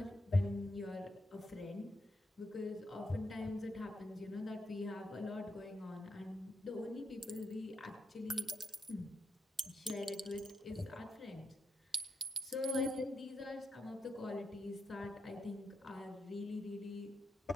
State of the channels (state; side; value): normal; both; correlation 0.81